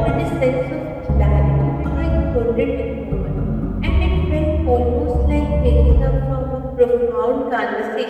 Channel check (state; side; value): identical; both; correlation 1.00